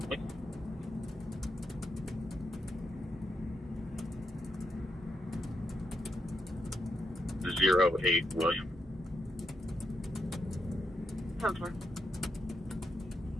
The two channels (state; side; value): normal; both; correlation 0.82